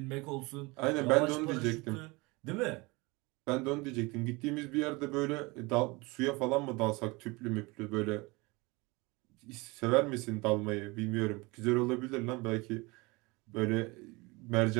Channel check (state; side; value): quieter; left; 24.9 dB